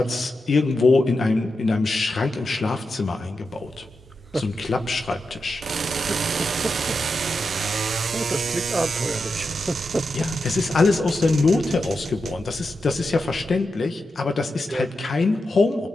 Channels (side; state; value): both; normal; correlation 0.88